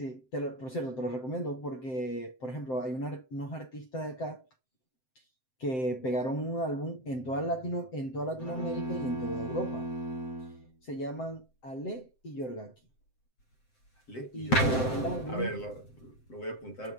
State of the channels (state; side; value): late; right; 7.7 ms